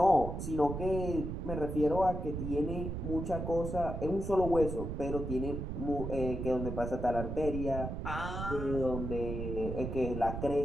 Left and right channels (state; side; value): noise; right; rumble, 4 dB below the sound